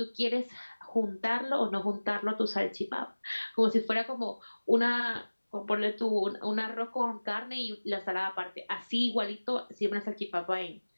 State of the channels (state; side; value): inverted; both; correlation -1.00